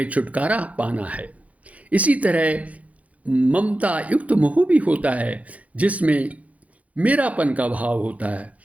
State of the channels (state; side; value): late; left; 0.068 ms